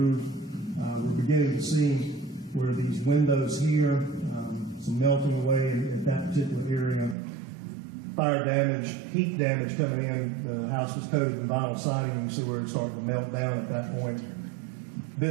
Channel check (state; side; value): drops out; left; at 7.2 s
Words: We're beginning to see where these windows here, some melting away at that particular area. fire damage, heat damage coming in. The house was coated in vinyl siding. You see where it's starting to melt down at that point.